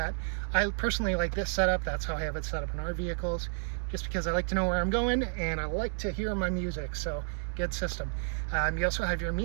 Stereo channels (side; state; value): left; silent; 57 dB below the other